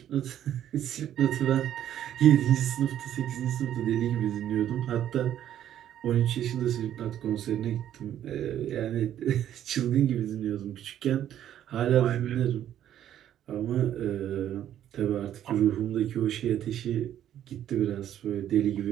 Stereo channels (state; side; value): quieter; left; 11.1 dB